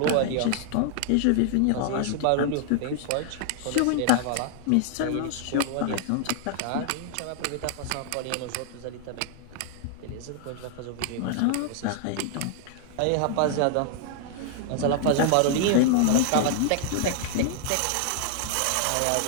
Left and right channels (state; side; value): different; both; correlation 0.00